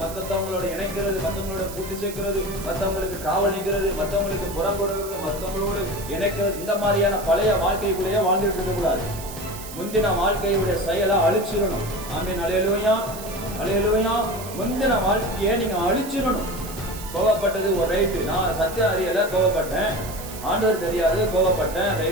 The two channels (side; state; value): right; noise; hiss, 13 dB below the sound